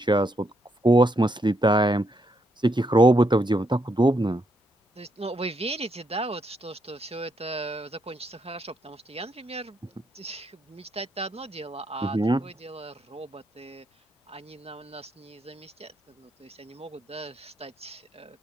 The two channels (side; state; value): both; normal; correlation 0.77